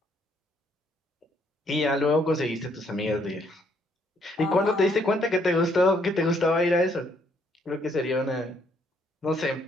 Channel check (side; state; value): both; normal; correlation 0.69